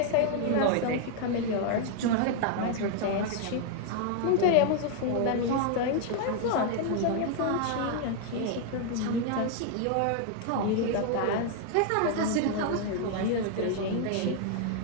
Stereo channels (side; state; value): both; different; correlation 0.00